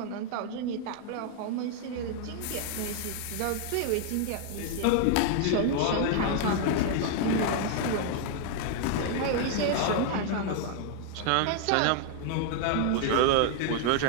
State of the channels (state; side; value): different; both; correlation 0.00